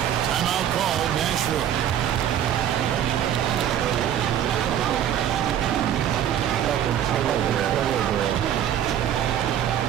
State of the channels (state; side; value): quieter; left; 10.2 dB